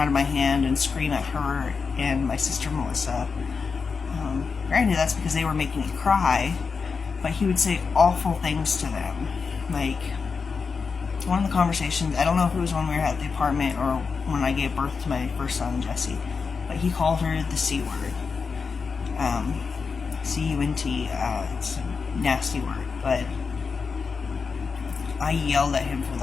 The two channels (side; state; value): right; quieter; 5.2 dB